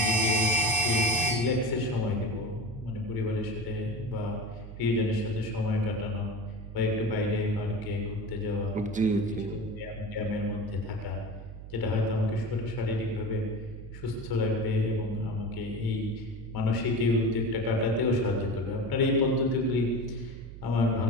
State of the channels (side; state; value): right; noise; hum, 12 dB below the sound